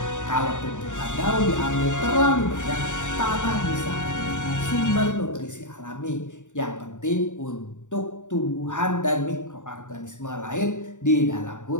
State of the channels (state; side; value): late; right; 0.86 ms